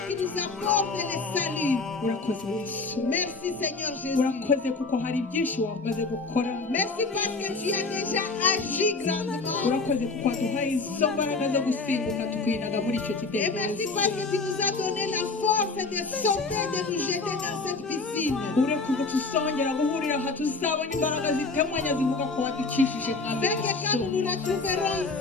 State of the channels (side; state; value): right; quieter; 3.9 dB